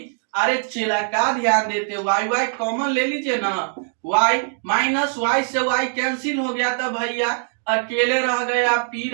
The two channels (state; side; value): silent; left; digital silence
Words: अरे चेला का ध्यान देते, वाई वाई कॉमन ले लीजिए ना, वाई माइनस वाई से वाई कैंसिल हो गया तो भैया अकेले रह गया, पी